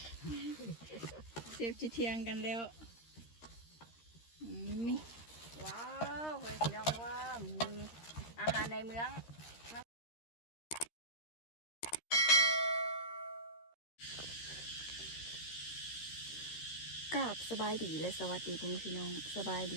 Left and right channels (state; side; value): late; right; 13 ms